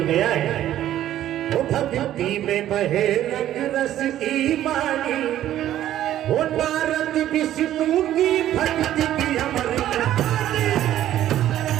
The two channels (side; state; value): left; quieter; 12.5 dB